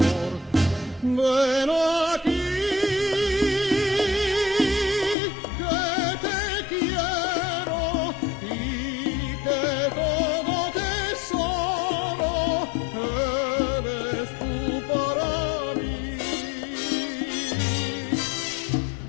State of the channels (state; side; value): drops out; right; at 5.2 s